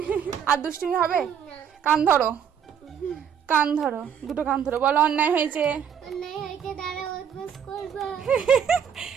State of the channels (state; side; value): quieter; left; 8.1 dB